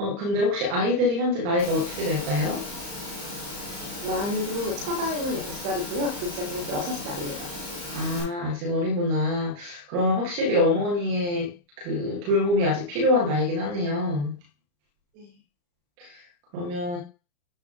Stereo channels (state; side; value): late; left; 34 ms